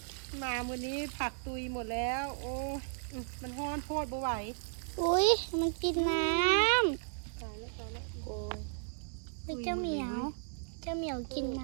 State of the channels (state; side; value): silent; left; digital silence